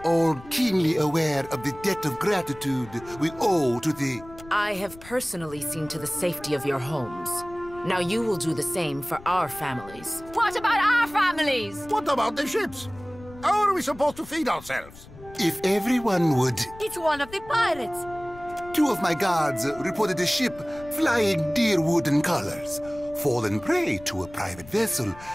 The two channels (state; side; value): noise; left; rumble, 19 dB below the sound